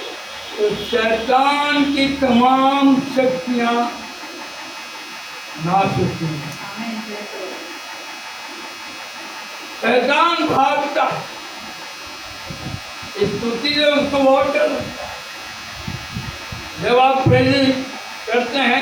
तो शैतान की तमाम शक्तियां नाश होती हैं। शैतान भागता है, स्तुति से उसको बहुत डर लगता है। जब आप प्रेजेंस करते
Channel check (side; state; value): right; noise; hiss, 30 dB below the sound